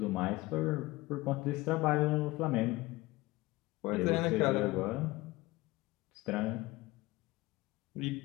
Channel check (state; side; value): quieter; right; 20.1 dB